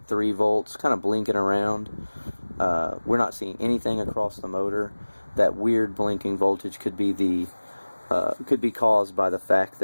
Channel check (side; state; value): both; inverted; correlation -1.00